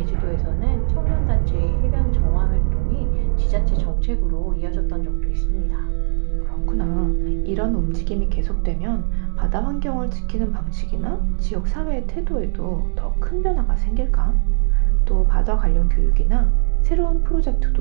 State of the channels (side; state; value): left; silent; digital silence